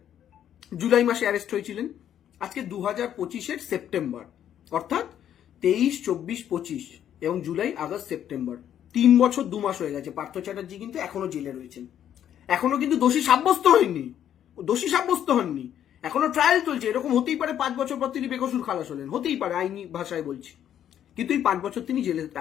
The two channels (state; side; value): quieter; right; 10.2 dB